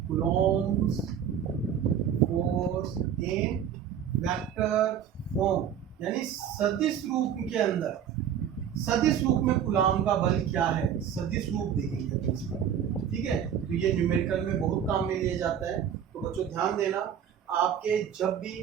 Coulomb force in vector form, यानी सदिश रूप के अंदर, सदिश रूप में कूलॉम का बल क्या है, सदिश रूप देखेंगे इसमें, ठीक है। तो ये न्यूमेरिकल में बहुत काम में लिया जाता है। तो बच्चों ध्यान देना, आपके जब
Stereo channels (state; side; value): quieter; left; 8.9 dB